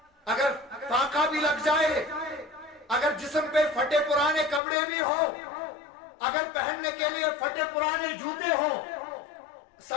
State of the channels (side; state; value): right; drops out; at 4.6 s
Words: اگر فاقہ بھی لگ جائے اگر جسم پہ پھٹے پرانے کپڑے بھی ہو اگر پہننے کے لیے پھٹے پرانے جوتے ہو